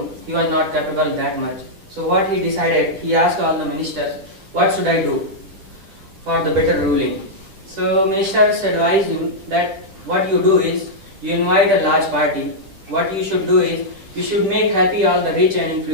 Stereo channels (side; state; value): left; late; 9.8 ms